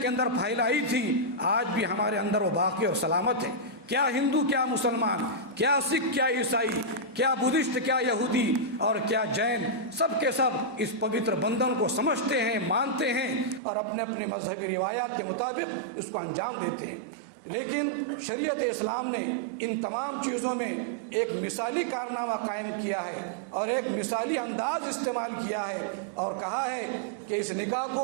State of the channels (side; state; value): left; drops out; at 13.6 s